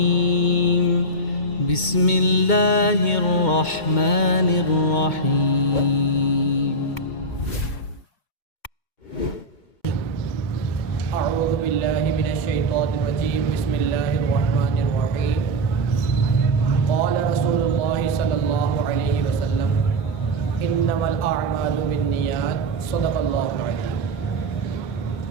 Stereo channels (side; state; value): right; late; 2.2 ms